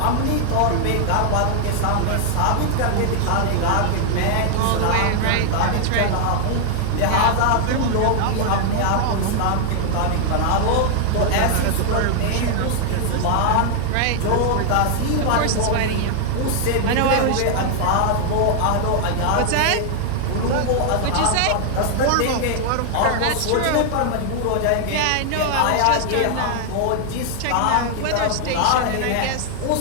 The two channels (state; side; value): different; both; correlation 0.00